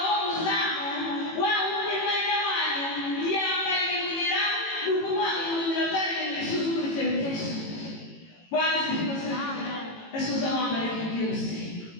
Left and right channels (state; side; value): late; right; 18 ms